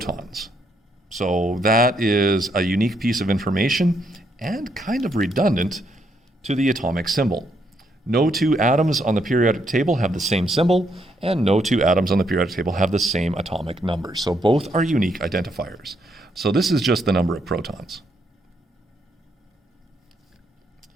So that is a unique piece of information and kind of redundant to the atomic symbol. No two atoms on the periodic table have the same symbol, and no two atoms on the periodic table have the same atomic number. So both are unique identifiers. So this is just the number of protons.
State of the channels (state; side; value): normal; both; correlation 0.75